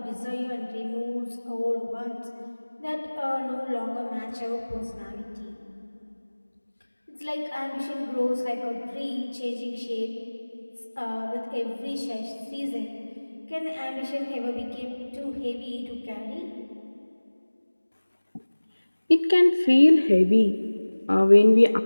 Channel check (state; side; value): inverted; both; correlation -1.00